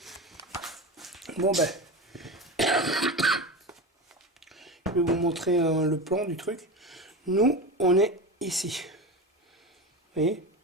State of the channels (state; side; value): normal; both; correlation 0.24